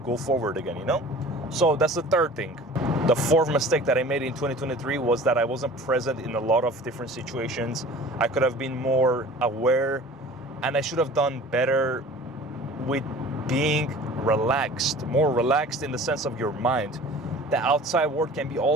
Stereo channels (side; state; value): both; normal; correlation 0.43